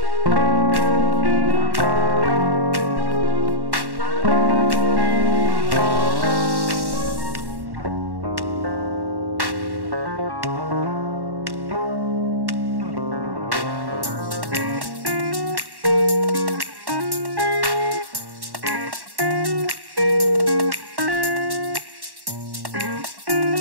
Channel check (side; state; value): left; late; 1.1 ms